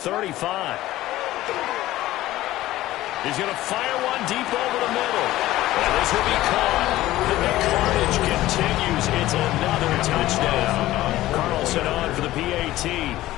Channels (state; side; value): quieter; right; 15.8 dB